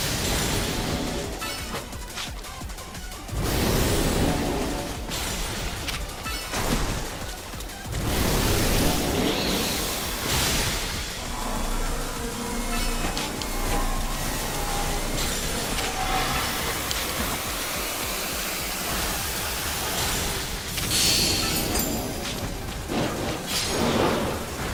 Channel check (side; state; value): both; identical; correlation 1.00